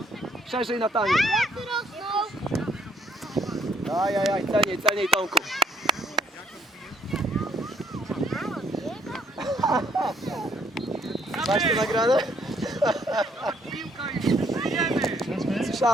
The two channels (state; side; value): normal; both; correlation 0.65